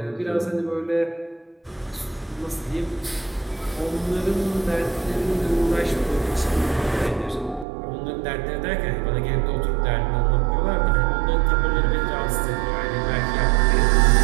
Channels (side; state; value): left; drops out; at 7.7 s